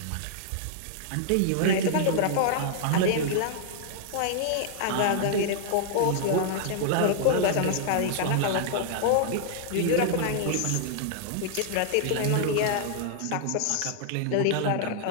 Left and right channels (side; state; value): both; different; correlation -0.01